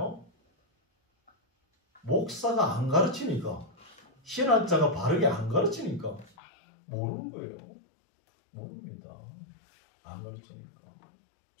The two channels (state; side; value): drops out; right; at 6.3 s